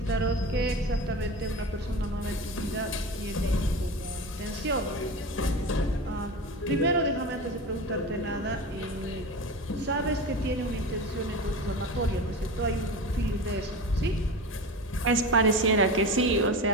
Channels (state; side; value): normal; both; correlation 0.27